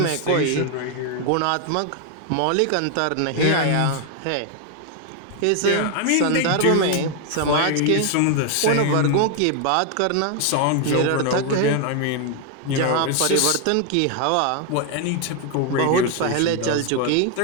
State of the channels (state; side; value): different; both; correlation 0.00